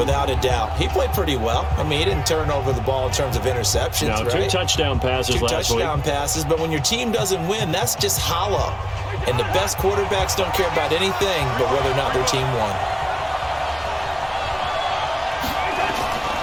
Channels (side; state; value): both; identical; correlation 1.00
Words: a doubt. He played pretty well. I mean, he didn't turn over the ball in terms of interceptions, no, right? 2 touchdown passes last week. 2 touchdown passes, but when your team doesn't win, that's just hollow. And the best quarterbacks don't care about anything but whether or not their team won.